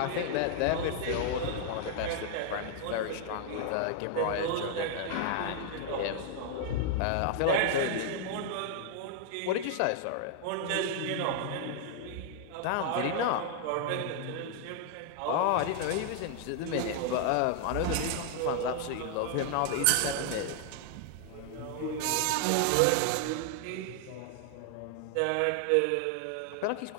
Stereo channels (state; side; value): different; both; correlation 0.00